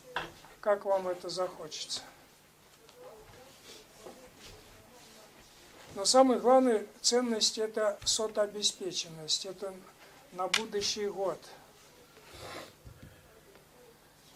Как вам это захочется. Но самая главная ценность это сотообеспеченность. Это на будущий год.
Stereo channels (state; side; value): identical; both; correlation 1.00